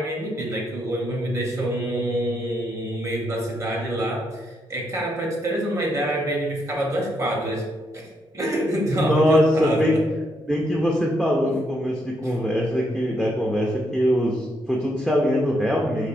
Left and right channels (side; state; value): both; normal; correlation 0.77